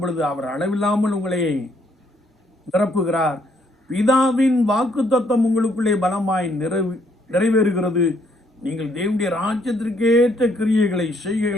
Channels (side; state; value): both; normal; correlation 0.69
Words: அவர் அளவில்லாமல் உங்களை நிரப்புகிறார். பிதாவின் வாக்குத்தத்தம் உங்களுக்குள்ளே பலமாய் நிறைவேறுகிறது. நீங்கள் தேவனுடைய ராஜ்யத்திற்கேற்ற கிரியைகளை